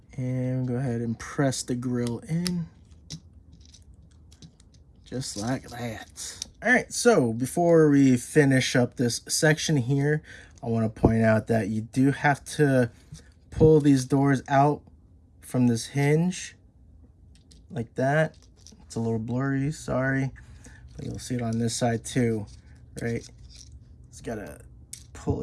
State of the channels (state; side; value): identical; both; correlation 1.00